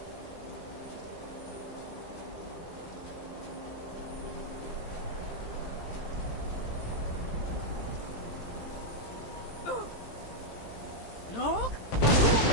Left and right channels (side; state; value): right; late; 17 ms